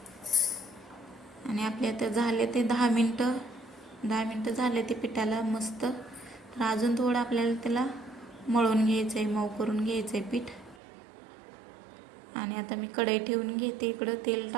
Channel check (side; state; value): left; drops out; at 10.8 s